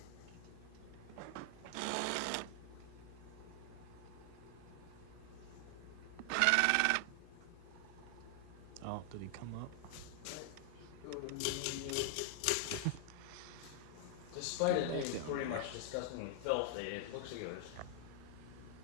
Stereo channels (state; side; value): different; both; correlation -0.01